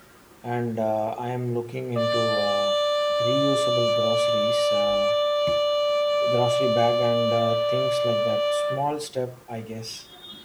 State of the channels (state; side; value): identical; both; correlation 1.00